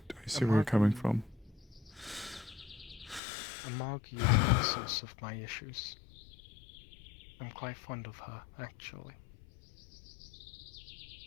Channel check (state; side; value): drops out; right; at 3.2 s